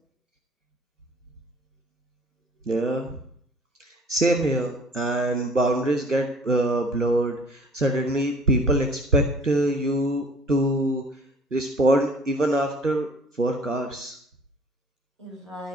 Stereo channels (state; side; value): normal; both; correlation 0.53